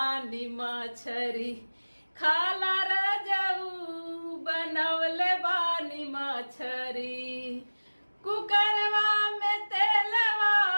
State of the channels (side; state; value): both; inverted; correlation -1.00